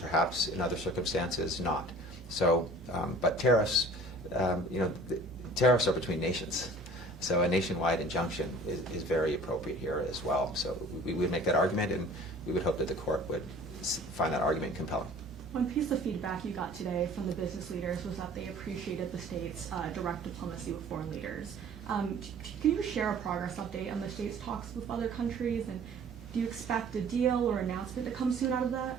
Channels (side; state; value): both; normal; correlation 0.47